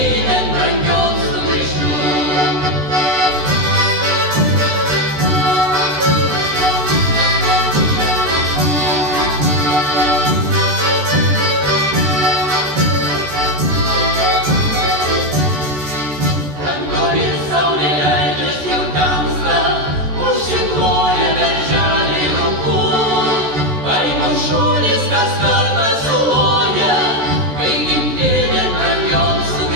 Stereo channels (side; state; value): left; late; 14 ms